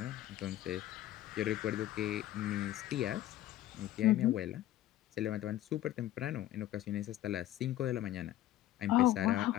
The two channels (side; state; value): right; quieter; 13.8 dB